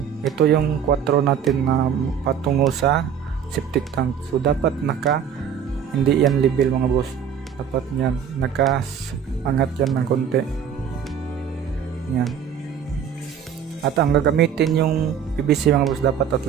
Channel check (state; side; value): quieter; left; 8.0 dB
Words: ito yung 4 natin na patungo sa septic tank. So dapat hindi yan level mga boss. Dapat yan naka-angat yan ng konti. Yan. At ang gagamitin yung PVC mga boss dapat